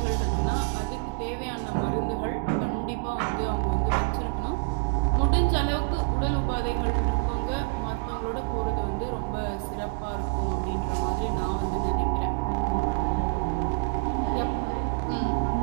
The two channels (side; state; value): left; silent; digital silence